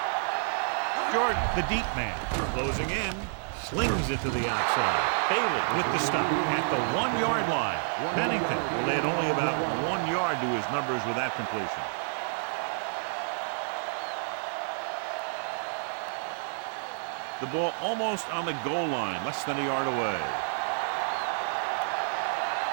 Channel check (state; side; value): silent; left; digital silence